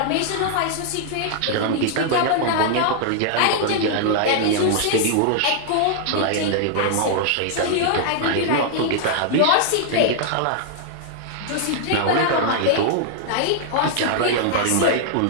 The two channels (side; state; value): both; different; correlation -0.01